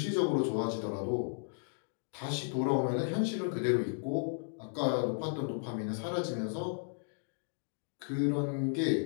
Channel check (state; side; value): silent; right; digital silence